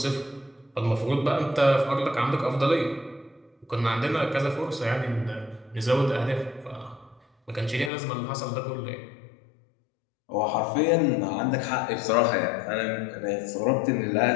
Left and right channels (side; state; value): right; drops out; at 7.9 s